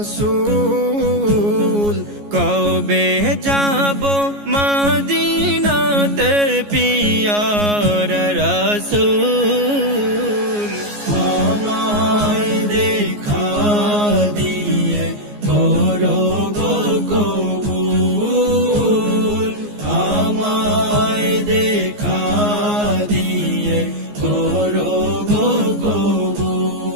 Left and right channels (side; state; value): left; late; 14 ms